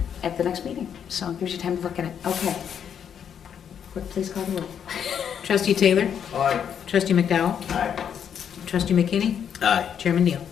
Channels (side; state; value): right; quieter; 8.3 dB